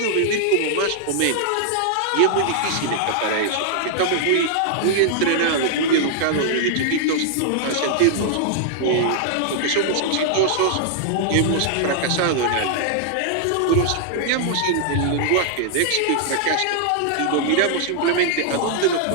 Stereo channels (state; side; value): different; both; correlation -0.01